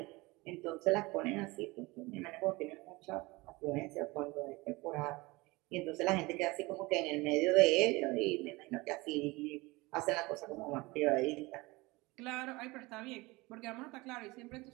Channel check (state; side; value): quieter; left; 22.7 dB